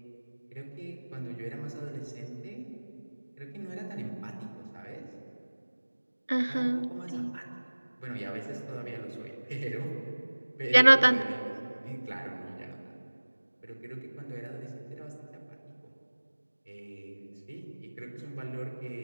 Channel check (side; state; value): both; inverted; correlation -1.00